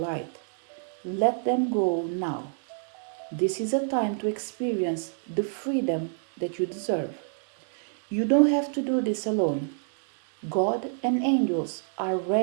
Let them go now. This is a time to experience the freedom that you deserve. You don't have to do this alone. God and angels are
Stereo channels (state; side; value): silent; left; digital silence